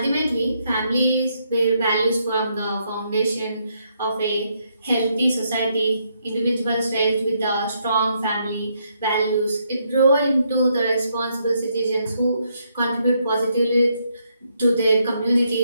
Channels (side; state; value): both; inverted; correlation -0.76